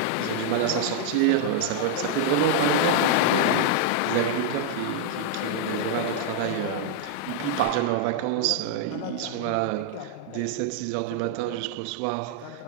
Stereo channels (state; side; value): different; both; correlation -0.01